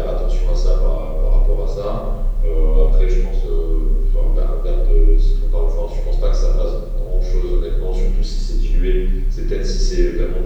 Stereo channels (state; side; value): identical; both; correlation 1.00